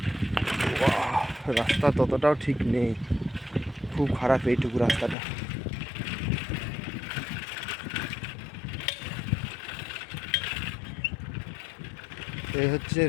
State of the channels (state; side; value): drops out; right; at 5.2 s